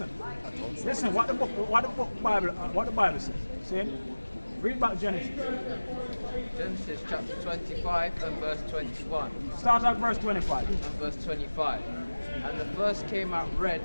What the Bible says. See? Read back Genesis. Genesis chapter 25 and verse 21 Start at verse 25. and verse 25. And the first came out red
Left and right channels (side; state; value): both; inverted; correlation -1.00